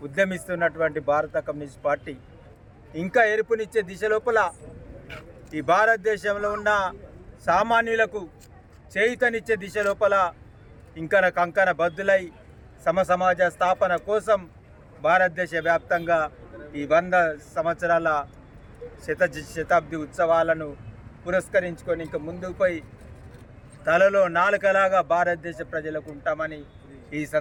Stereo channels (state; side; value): identical; both; correlation 1.00